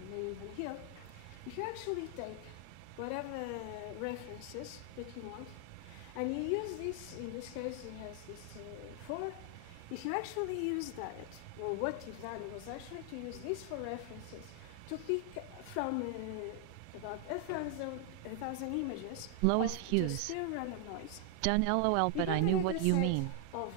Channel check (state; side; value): different; both; correlation 0.00